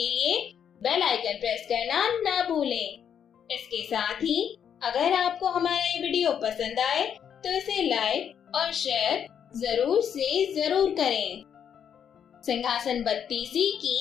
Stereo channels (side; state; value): right; quieter; 8.4 dB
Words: लिए बेल आइकन प्रेस करना ना भूलें। इसके साथ ही अगर आपको हमारा ये वीडियो पसंद आए तो इसे लाइक और शेयर जरूर से जरूर करें। सिंहासन बत्तीसी की